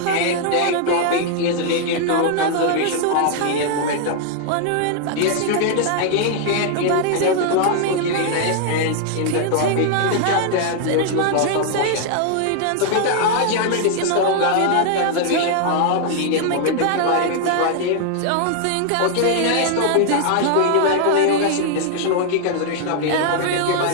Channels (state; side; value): different; both; correlation 0.00